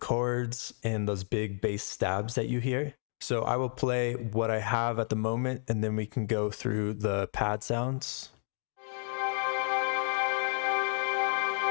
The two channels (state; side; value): silent; right; 55 dB below the other